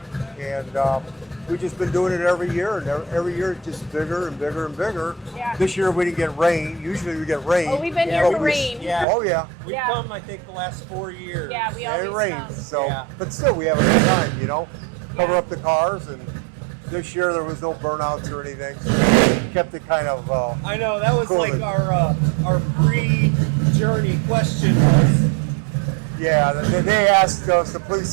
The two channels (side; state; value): left; drops out; at 9.1 s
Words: and we've just been doing it every year, and every year it's just bigger and bigger and bigger. Yeah. This year we didn't get rain. Usually we get rain. Oh, we've been here but for rain. Yeah. Oh yeah. We've Yeah. come, I think, the last 4 years. Yeah, we Yeah, it always rains. come. So, Yeah. but still we have a good time. You know, cover Yeah. up the cars, and this year there was no burnouts or anything. So kept it kind of. I know, that was Cool. like our pre-journey question was. Yeah, they asked us, the police